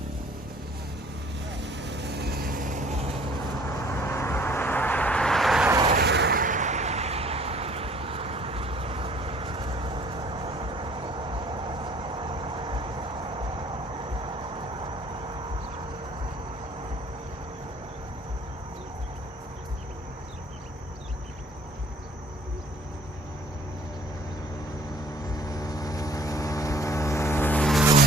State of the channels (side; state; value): both; normal; correlation 0.54